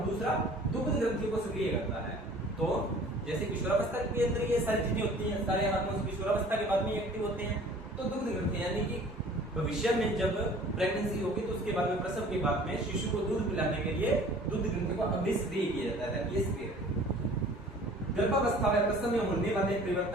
दूसरा दुग्ध ग्रंथि को सक्रिय करता है। तो जैसे किशोरावस्था के अंदर ये सारी चीजें होती हैं, सारे हार्मोन्स किशोरावस्था के बाद में एक्टिव होते हैं। तो दुग्ध ग्रंथि यानी कि भविष्य में जब प्रेगनेंसी होगी तो उसके बाद में प्रसव के बाद में शिशु को दूध पिलाने के लिए दुग्ध ग्रंथि को अभिक्रिय किया जाता है। ये सक्रिय गर्भावस्था में प्रसव में होने वाले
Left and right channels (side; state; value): both; normal; correlation 0.49